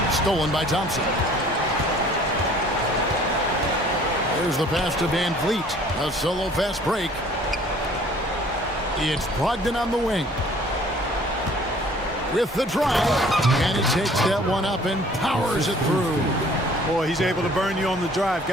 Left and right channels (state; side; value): normal; both; correlation 0.53